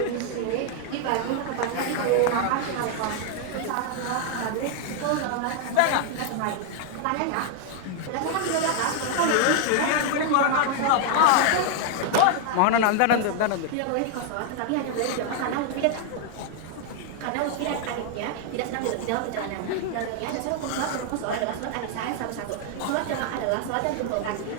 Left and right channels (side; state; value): both; different; correlation 0.00